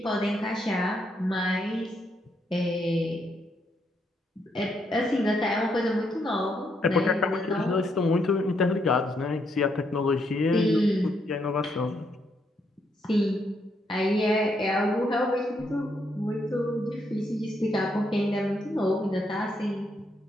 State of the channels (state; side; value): normal; both; correlation 0.76